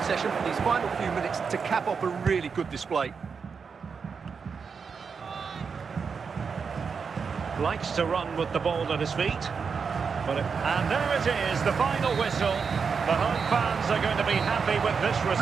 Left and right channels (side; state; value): left; quieter; 5.7 dB